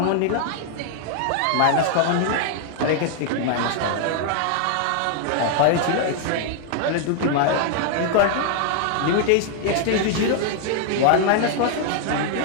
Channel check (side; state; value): both; different; correlation 0.00